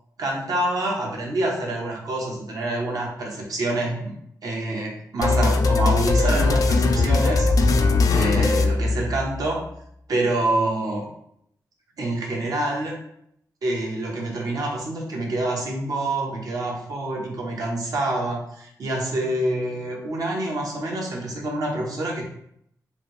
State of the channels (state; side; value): normal; both; correlation 0.77